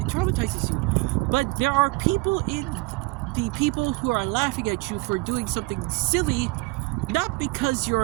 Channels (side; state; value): left; quieter; 25.2 dB